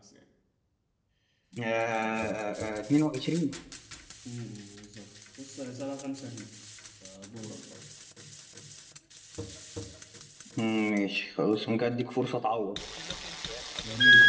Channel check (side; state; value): both; identical; correlation 1.00